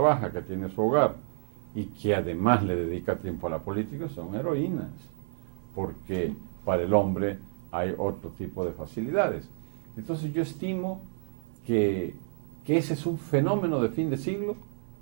que tiene su hogar y que además le dedica tiempo a la política son heroínas, porque para el hombre hay otro tipo de facilidades. Entonces yo estimo que ese es un fenómeno de fin de siglo,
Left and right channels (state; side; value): silent; left; digital silence